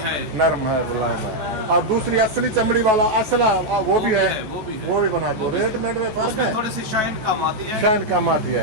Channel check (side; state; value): left; late; 14 ms